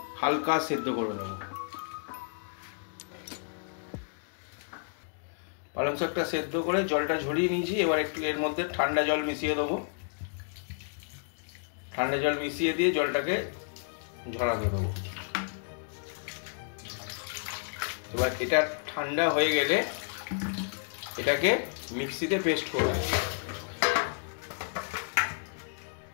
হালকা সেদ্ধ করে নেব। পালং শাকটা সেদ্ধ করে জলটা ঝরিয়ে নিয়েছি। এবার একটু এর মধ্যে ঠান্ডা জল মিশিয়ে দেবো। ঠান্ডা জল মিশিয়ে দিয়ে জলটাকে ঝরাতে দেবো। এবার এটা ঠান্ডা হয়ে গেলে এটাকে মিক্সিতে পেস্ট করব।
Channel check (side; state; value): right; silent; digital silence